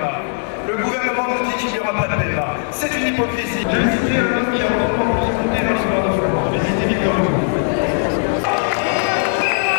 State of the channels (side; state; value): right; silent; digital silence